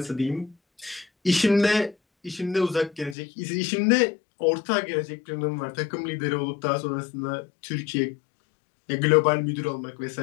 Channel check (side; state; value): right; drops out; at 3.2 s